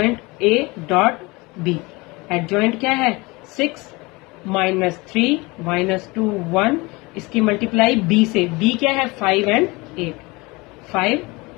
dot B. Adjoint क्या है? 6 माइनस 3 माइनस 2 1, इसकी मल्टीप्लाई b से। b क्या है? 5 and 8, 5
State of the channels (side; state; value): right; quieter; 24.3 dB